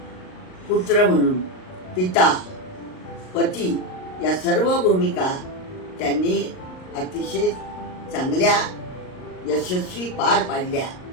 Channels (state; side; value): late; right; 38 ms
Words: पुत्र म्हणून, पिता, पती या सर्व भूमिका त्यांनी अतिशय चांगल्या यशस्वी पार पाडल्या